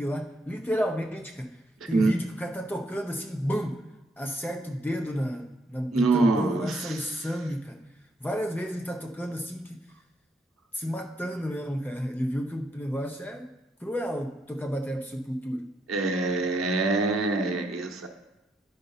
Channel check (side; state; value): both; normal; correlation 0.76